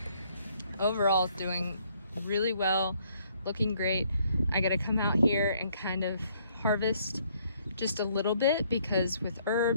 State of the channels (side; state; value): both; inverted; correlation -0.67